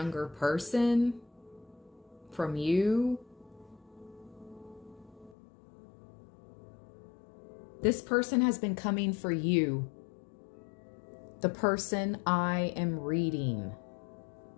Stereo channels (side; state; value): right; drops out; at 5.4 s